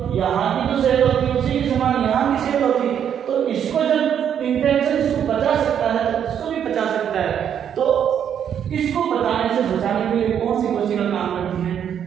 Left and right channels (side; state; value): left; quieter; 8.8 dB